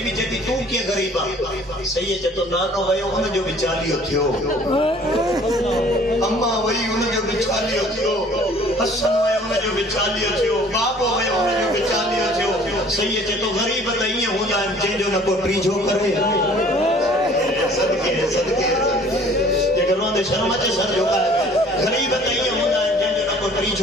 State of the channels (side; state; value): both; normal; correlation 0.53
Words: بی جتی تو کیا غریبا سید چتو نانو ویو ان جو بچالیو تھیو اما وی ان جو بچالیو تھیو حسن ویو ان جو بچالیو تھیو بابو ویو ان جو بچالیو تھیو سید چتو غریب تائیں ہوندا ہے جن جو نہ کو ٹریجو کرے صدقے یہ گھروں دے شرم اچھے سر جو ہے غریب تائیں ہوندا ہے جن جو نہ کو